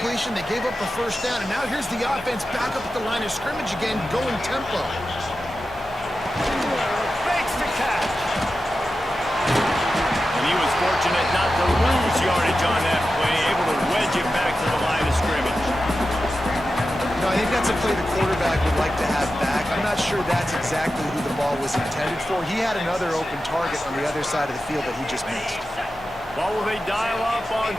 they gave up the first down, and now here's the offense back up at the line of scrimmage again, going tempo. Makes the catch. And he was fortunate not to lose yardage on that play, able to wedge it back to the line of scrimmage. No, I think that's a play the quarterback would like to have back. I'm not sure that's exactly who the ball was intended for. He had another open target on the other side of the field that he just missed. What will they dial up on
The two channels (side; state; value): both; normal; correlation 0.92